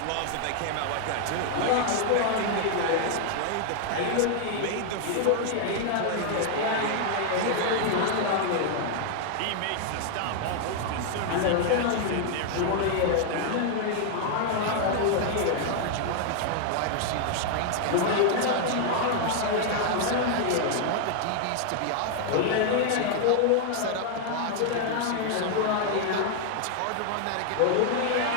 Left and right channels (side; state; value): both; different; correlation 0.00